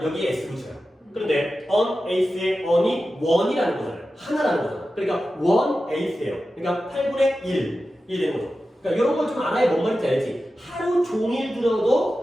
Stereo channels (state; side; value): normal; both; correlation 0.93